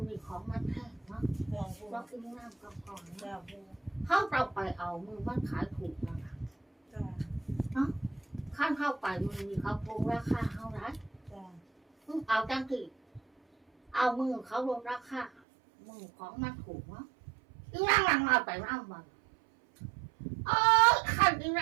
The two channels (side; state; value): left; drops out; at 15.3 s